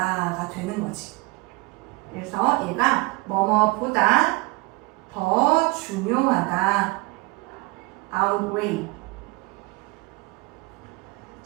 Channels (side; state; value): left; quieter; 24.4 dB